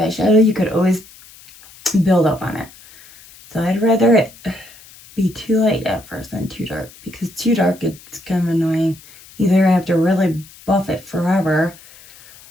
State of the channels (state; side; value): noise; left; hiss, 22 dB below the sound